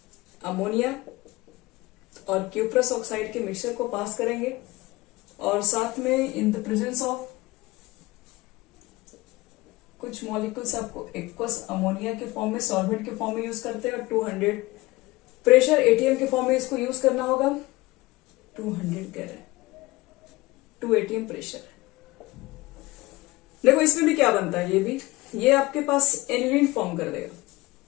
अमोनिया और क्यूप्रस ऑक्साइड के मिक्सचर को पास करेंगे, और साथ में इन द प्रेजेंस ऑफ कुछ मॉलिक्यूल्स आपको एक्वस अमोनिया के फॉर्म में, सॉल्वेंट के फॉर्म में यूज करते हैं, और 200 प्रेशर ATM के फॉर्म में इसको यूज करना होगा। 200 कह रहे हैं, 2 ATM प्रेशर। देखो इसमें भी क्या बनता है, ये आपके पास एनिलीन फॉर्म कर देगा,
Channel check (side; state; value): right; quieter; 20.7 dB